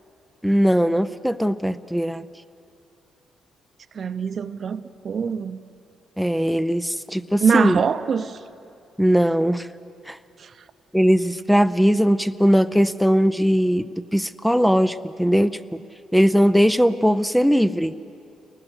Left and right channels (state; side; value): normal; both; correlation 0.97